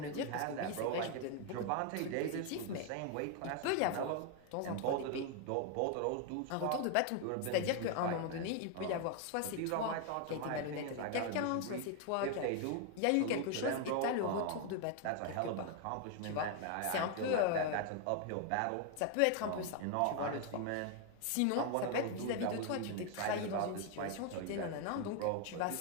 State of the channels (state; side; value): different; both; correlation 0.00